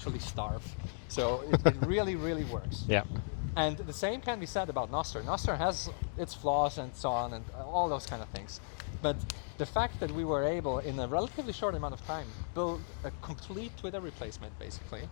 starve. So it really, really works. Yeah. And the same can be said about Nostr. Nostr has its flaws and so on, and all those kind of things. But the fact that we were able, in a relatively short amount of time, build a complete Twitter replacement, basically,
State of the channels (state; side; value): quieter; right; 37.1 dB